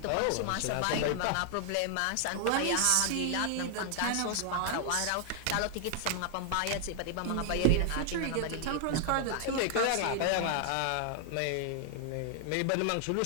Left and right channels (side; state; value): both; different; correlation 0.00